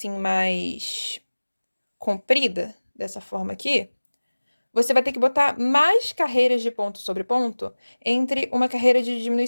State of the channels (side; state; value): both; inverted; correlation -1.00